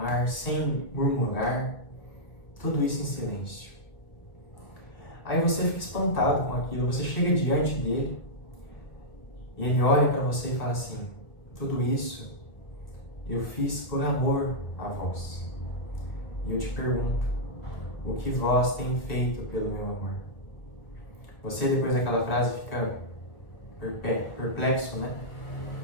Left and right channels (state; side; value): late; right; 1.5 ms